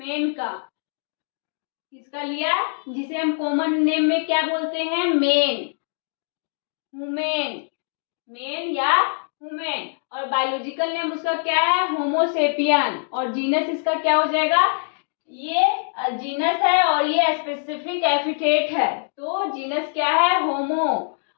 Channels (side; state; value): right; silent; digital silence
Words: का, किसका लिया, जिसे हम कॉमन नेम में क्या बोलते हैं, मेन, हुमेन, मेन या हुमेन, और बायोलॉजिकल नेम उसका क्या है, होमोसेपियन, और जीनस इसका क्या हो जाएगा, ये जीनस है और ये स्पेसिफिक एपिथेट है, तो जीनस क्या है, होमो,